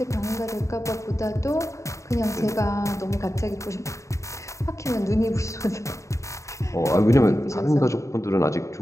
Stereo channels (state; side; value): late; right; 0.15 ms